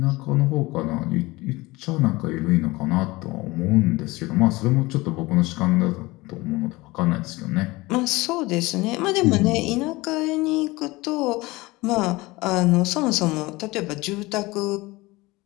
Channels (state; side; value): quieter; right; 21.5 dB